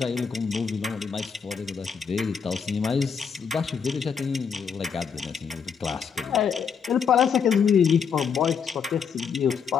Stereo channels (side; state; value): right; quieter; 6.6 dB